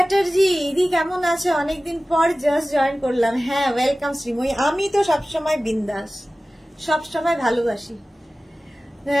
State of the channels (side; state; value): both; normal; correlation 0.96